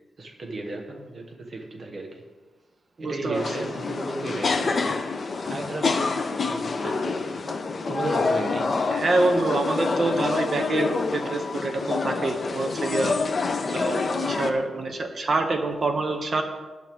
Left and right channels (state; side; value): normal; both; correlation 0.85